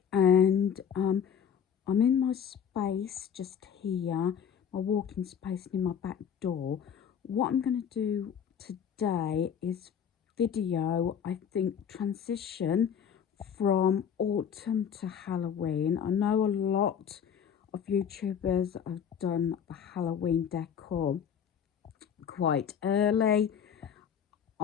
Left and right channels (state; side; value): quieter; right; 7.9 dB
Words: and I'm in my space just here, my walking space near my back door. What I'm going to do today is video, I think, transition from autumn to Halloween. I know a lot of YouTubers have done the Halloween decor quite early.